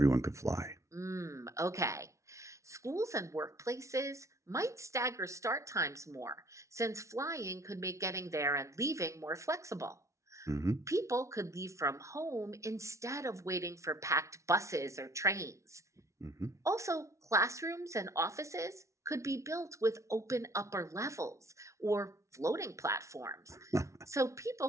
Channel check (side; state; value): left; late; 0.14 ms